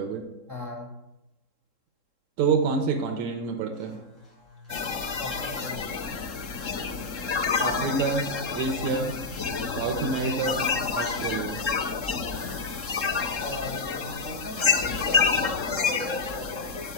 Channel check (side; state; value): left; late; 3.7 ms